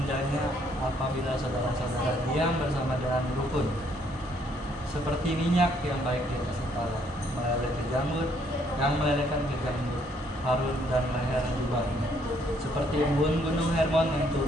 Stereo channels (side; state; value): both; normal; correlation 0.68